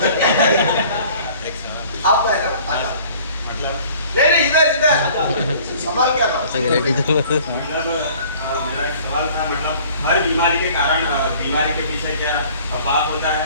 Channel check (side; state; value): both; inverted; correlation -0.51